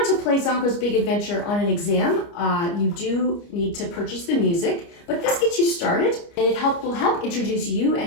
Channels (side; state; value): right; late; 29 ms